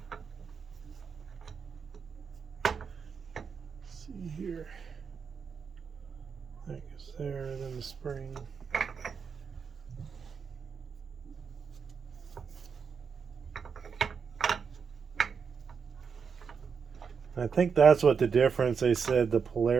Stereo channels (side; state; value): left; quieter; 6.1 dB